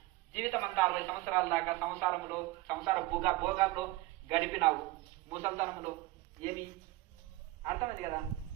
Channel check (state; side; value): quieter; left; 19.0 dB